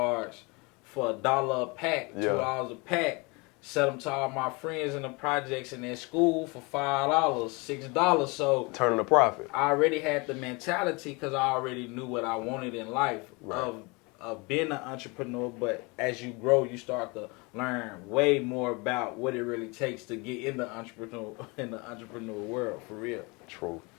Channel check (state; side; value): quieter; right; 27.9 dB